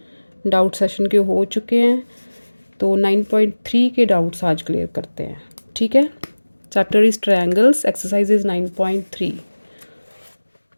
डाउट सेशन के हो चुके हैं, तो 9.3 के डाउट्स आज क्लियर करते हैं। ठीक है, chapter is triangles, exercise is 9.3।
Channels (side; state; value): both; inverted; correlation -1.00